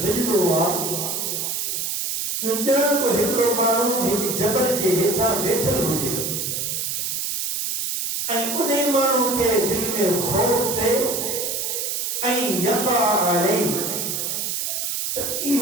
ججد ہوا جو جان کو ہمرو مانو ایک جبل جے ہیٹھا بیٹھل ہو جے این انہیں مانو کے دل میں خوف دے این یقع علی تو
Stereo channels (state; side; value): noise; right; hiss, 2 dB below the sound